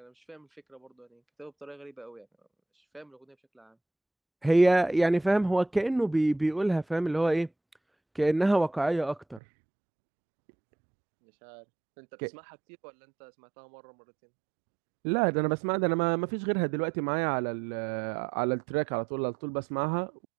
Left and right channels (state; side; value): drops out; left; at 9.4 s